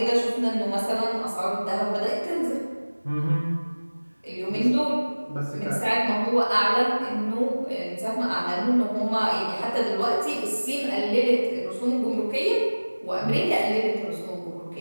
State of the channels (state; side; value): inverted; both; correlation -1.00